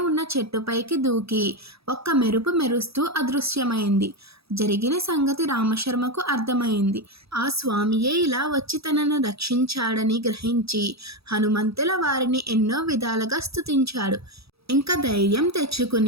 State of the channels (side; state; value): left; late; 0.77 ms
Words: ఉన్న చెట్టుపైకి దూకి ఒక్క మెరుపు మెరుస్తూ అదృశ్యమైంది. జరిగిన సంగతి రామశర్మకు అర్థమైంది. ఆ స్వామియే ఇలా వచ్చి తనను రక్షించాడని గ్రహించి హనుమంతుల వారిని ఎన్నో విధాలుగా స్తుతించాడు. ఇంకా ధైర్యం